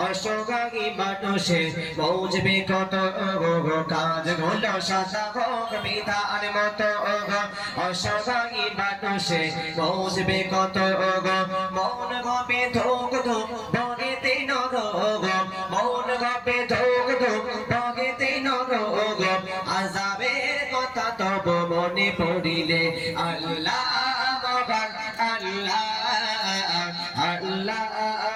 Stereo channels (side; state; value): both; identical; correlation 1.00